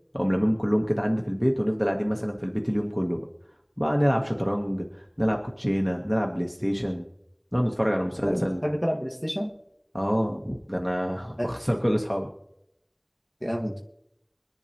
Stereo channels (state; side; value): identical; both; correlation 1.00